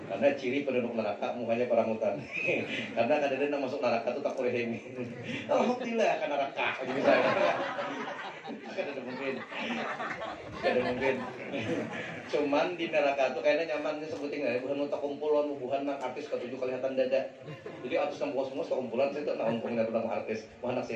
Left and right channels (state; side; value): identical; both; correlation 1.00